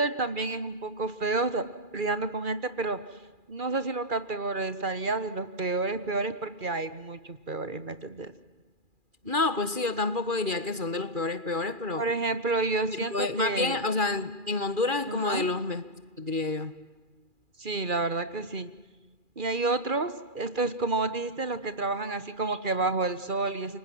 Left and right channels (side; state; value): left; late; 2.4 ms